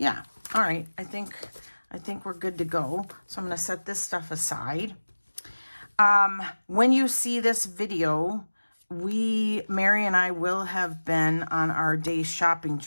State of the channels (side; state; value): both; inverted; correlation -1.00